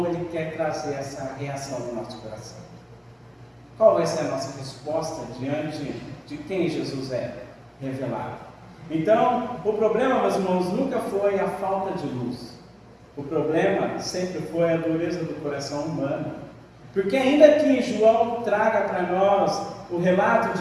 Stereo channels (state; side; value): identical; both; correlation 1.00